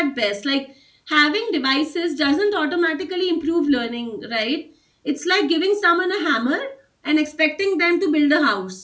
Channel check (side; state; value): both; identical; correlation 1.00